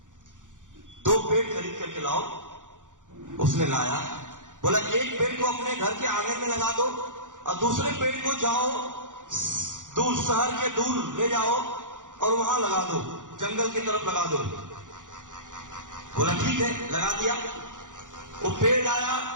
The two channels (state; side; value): late; left; 0.87 ms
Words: 2 पेड़ खरीद करके लाओ। उसने लाया, बोला एक पेड़ को अपने घर के आंगन में लगा दो और दूसरे पेड़ को जाओ दूर, शहर के दूर ले जाओ और वहां लगा दो, जंगल की तरफ लगा दो। बोला ठीक है, लगा दिया। वो पेड़ लाया